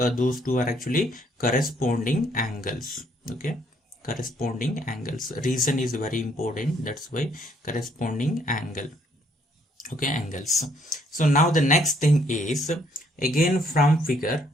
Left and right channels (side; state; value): both; normal; correlation 0.67